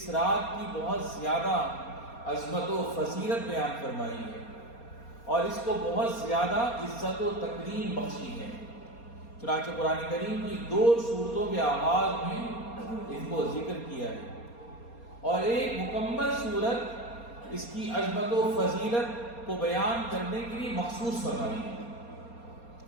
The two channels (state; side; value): late; right; 4.3 ms